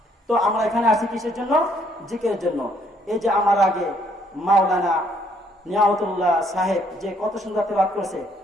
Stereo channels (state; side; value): normal; both; correlation 0.67